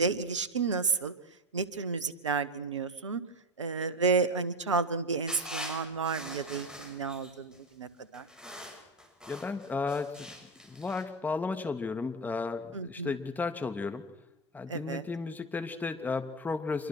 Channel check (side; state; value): both; normal; correlation 0.15